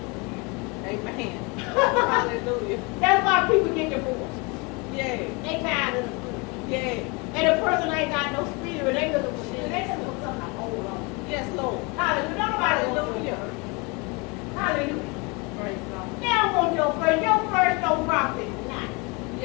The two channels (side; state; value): right; quieter; 28.5 dB